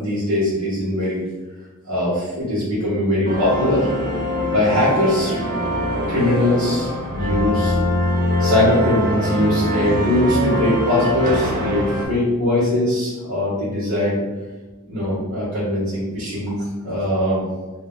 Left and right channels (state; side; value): normal; both; correlation 0.31